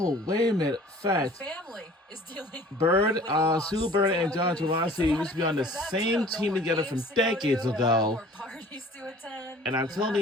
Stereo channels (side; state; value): both; normal; correlation 0.49